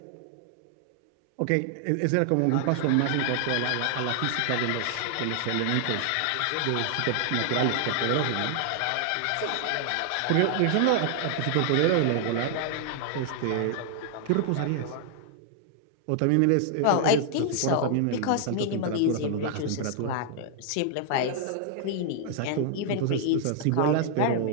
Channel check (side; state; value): both; different; correlation 0.00